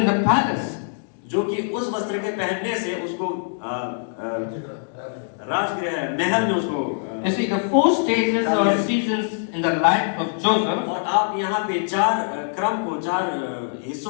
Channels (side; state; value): right; silent; digital silence